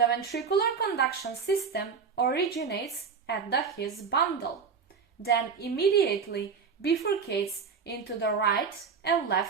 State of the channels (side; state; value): left; quieter; 5.9 dB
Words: ventricular conduction system originates at the His bundle, then immediately bifurcates into the right and